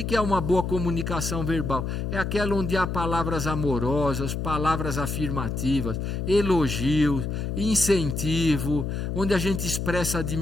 é uma boa comunicação verbal? É aquela onde há palavras amorosas, palavras afirmativas, elogios, incentivo, onde a gente expressa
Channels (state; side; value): noise; left; hum, 3 dB below the sound